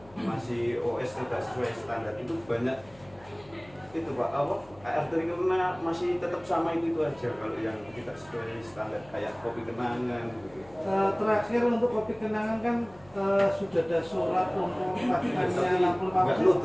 masih OS tidak sesuai standar. Itu banyak itu Pak, AR triggernya masih tetap sama itu aja kalau yang tidak sesuai standar kayak kopi kenangan gitu. Terakhir untuk kopi kenangan kan sudah ada surat untuk lakukannya lampu nggak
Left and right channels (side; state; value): left; noise; hum, 24 dB below the sound